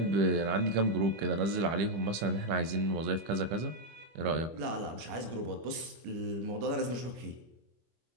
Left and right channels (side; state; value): left; late; 25 ms